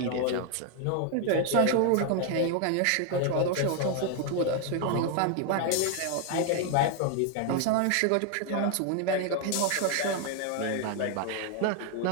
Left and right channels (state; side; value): different; both; correlation 0.00